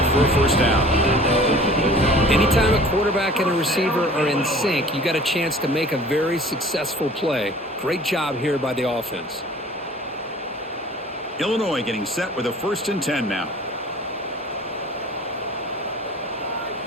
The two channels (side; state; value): both; normal; correlation 0.47